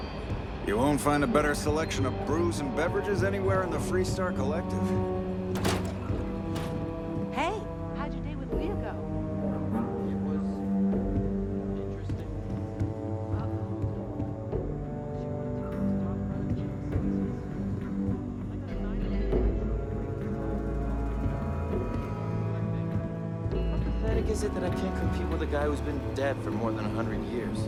You won't find a better selection of brews and beverages anywhere in the Freestar Collective. Hey, how'd your day with Leah go? It was interesting. How pathetic is it that I can't compete with a guy who's been dead for more than 100 years?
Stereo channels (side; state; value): both; identical; correlation 1.00